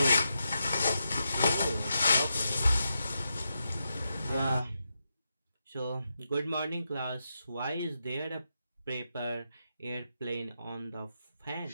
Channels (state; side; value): inverted; both; correlation -0.86